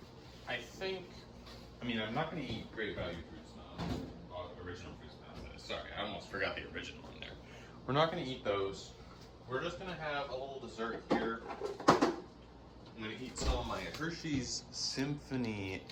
I'm not going to eat Great Value fruit smells, original fruit smells. Sorry, I almost forgot the original in there. We're not going to eat those. We're just going to have a little dessert here. I'm going to eat some of my Hershey's Symphony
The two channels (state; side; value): identical; both; correlation 1.00